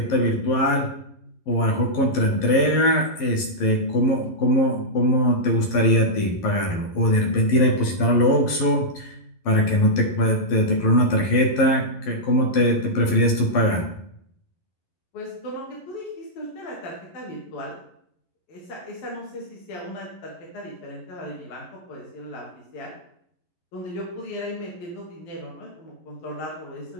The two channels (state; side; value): late; right; 11 ms